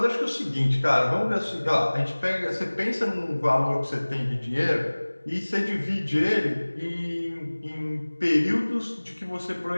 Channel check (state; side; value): inverted; both; correlation -1.00